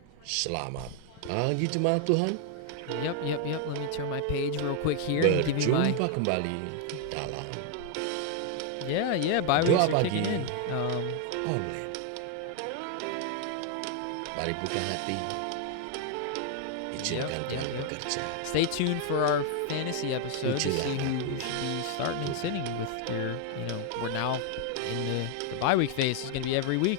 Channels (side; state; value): both; different; correlation 0.00